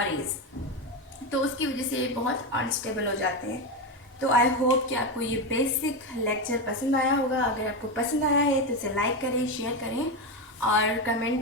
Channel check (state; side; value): normal; both; correlation 0.13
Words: rays, तो उसकी वजह से ये बहुत अनस्टेबल हो जाते हैं। तो आई होप कि आपको ये बेसिक लेक्चर पसंद आया होगा। अगर आपको पसंद आया है तो इसे लाइक करें, शेयर करें और कमेंट